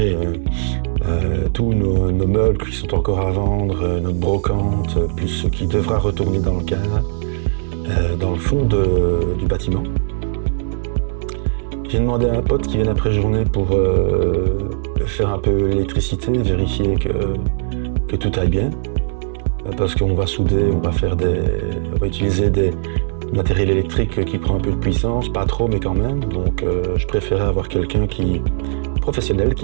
tous nos meubles qui sont encore à vendre, notre brocante, plus ce qui devra retourner dans le car, dans le fond du bâtiment. J'ai demandé à un pote qui vient après-journée pour faire un peu l'électricité, vérifier que tout aille bien. Parce qu'on va souder, on va utiliser des matériels électriques qui prend un peu de puissance, pas trop mais quand même. Donc je préférais avoir quelqu'un professionnel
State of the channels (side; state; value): left; silent; digital silence